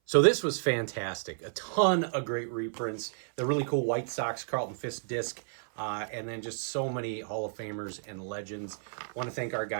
So this was fantastic. A ton of great reprints. The really cool White Sox Carlton Fisk disc. And then just so many Hall of Famers and legends. Want to thank our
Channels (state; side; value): silent; left; 57 dB below the other